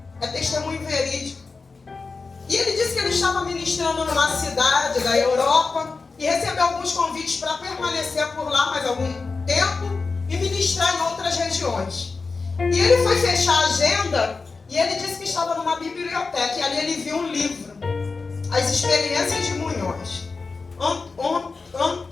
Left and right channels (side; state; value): right; quieter; 4.3 dB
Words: É testemunho verídico. E ele disse que ele estava ministrando numa cidade da Europa e recebeu alguns convites para permanecer por lá mais algum tempo e ministrar em outras regiões. E ele foi fechar a agenda e ele disse que estava numa biblioteca e ali ele viu um livro, As Experiências de Munhoz.